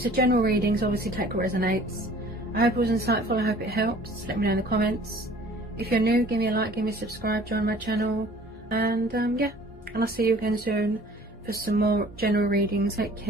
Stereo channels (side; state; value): both; normal; correlation 0.50